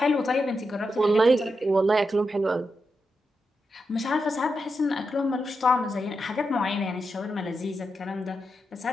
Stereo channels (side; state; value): both; normal; correlation 0.87